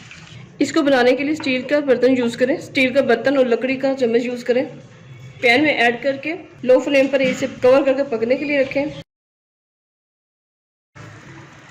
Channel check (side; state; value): both; identical; correlation 1.00